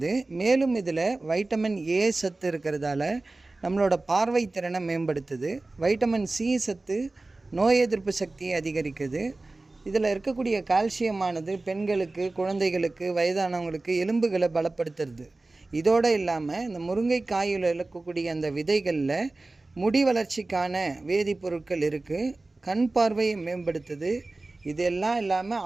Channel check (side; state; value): left; quieter; 3.1 dB